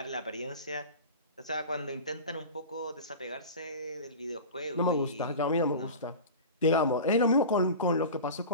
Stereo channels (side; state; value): both; inverted; correlation -0.32